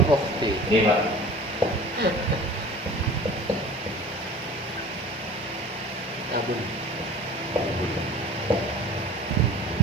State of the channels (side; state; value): both; normal; correlation 0.42